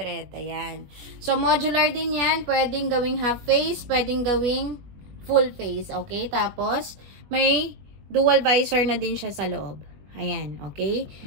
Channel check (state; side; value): late; left; 21 ms